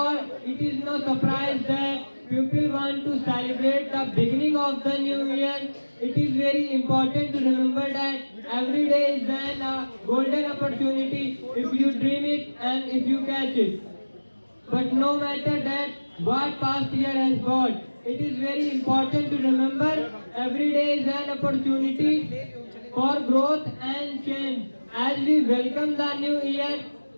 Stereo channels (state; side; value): inverted; both; correlation -1.00